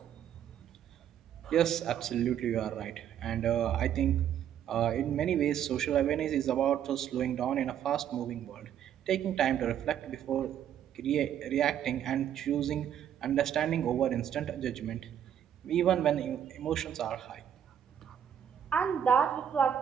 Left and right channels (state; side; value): quieter; left; 9.7 dB